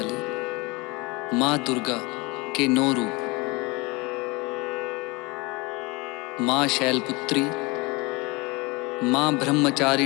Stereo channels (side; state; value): right; quieter; 25.8 dB